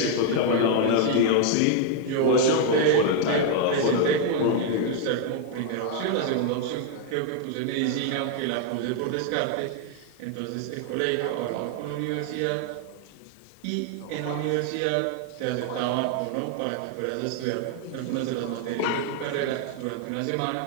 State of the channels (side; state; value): both; different; correlation 0.00